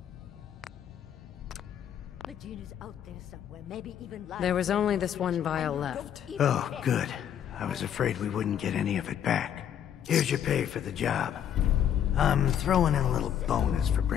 Medina's out there somewhere, maybe even lying. There was only this one vial left. Oh, good. I was afraid we wouldn't get any of it back. Here's your pay for the job. I'm throwing in a little bonus for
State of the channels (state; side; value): quieter; right; 9.6 dB